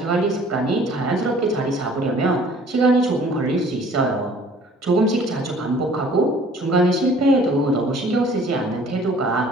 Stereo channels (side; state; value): both; normal; correlation 0.53